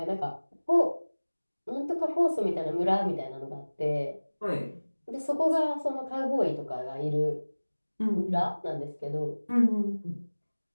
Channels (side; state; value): both; inverted; correlation -1.00